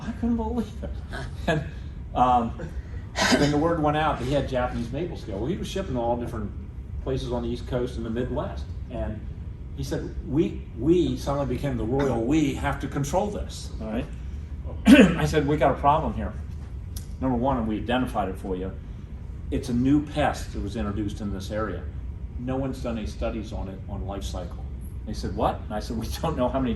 I couldn't believe it. And then the word went out that he had Japanese maple scale. Well, he was shipping to all different places on the East Coast and the Midwest. And he said, we suddenly became the royal we, have to control this. All right? I said, we got a problem here. Number one, and we identified it for you, it's a new pest that was introduced in this area. No one's done any studies on it on life cycle. They said, what? And I said, we don't know how many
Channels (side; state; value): both; identical; correlation 1.00